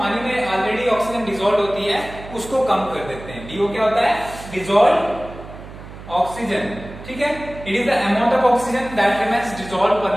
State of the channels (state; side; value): noise; right; hum, 15 dB below the sound